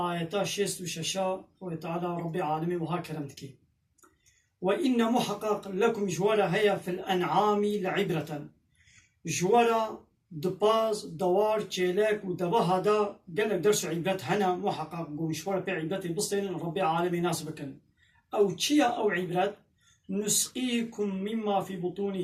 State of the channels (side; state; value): both; identical; correlation 1.00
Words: 66 وتعالى ربي عالمي وها كرمتكي وإن محقق لكم جوارا هيا في الأنعام لعبرة جوارا دباز دوار تشيلك ودبا هذا قالك درس عبرة هنا محقق جوارا بعبرة بصين ربي عالمي ناسبكن أو تشيا أو عبرة نسقيكم مما في